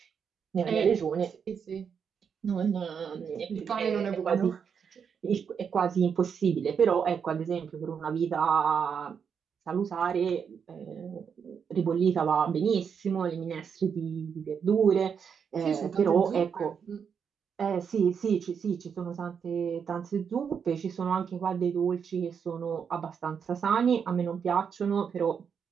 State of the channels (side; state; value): left; quieter; 6.9 dB